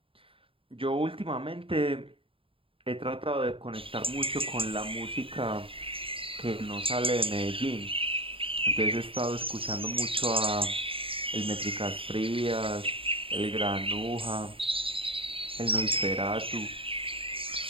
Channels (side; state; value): left; late; 0.26 ms